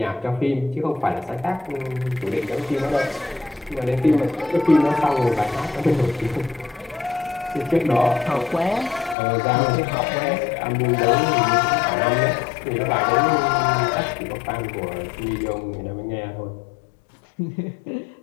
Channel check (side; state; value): right; drops out; at 9.2 s